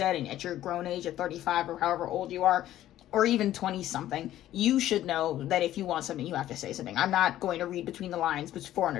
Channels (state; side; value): quieter; right; 13.2 dB